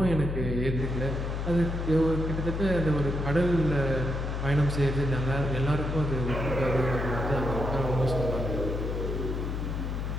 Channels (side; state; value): left; noise; hum, 2 dB below the sound